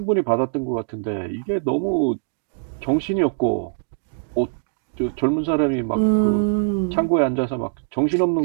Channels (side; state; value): left; silent; digital silence